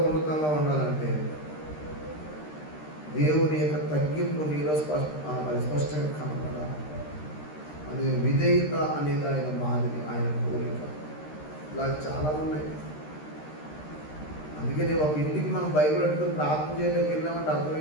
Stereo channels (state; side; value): late; right; 13 ms